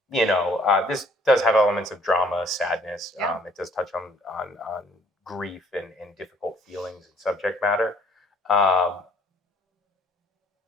this does have elements of drama, sadness. It does touch on grief and difficult feelings and subject matter. But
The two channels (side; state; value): both; normal; correlation 0.60